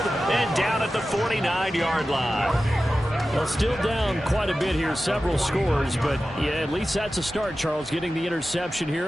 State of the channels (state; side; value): normal; both; correlation 0.94